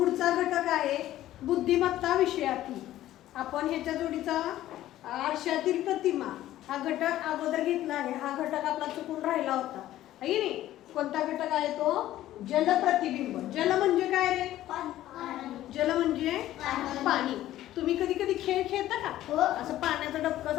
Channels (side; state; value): right; quieter; 13.9 dB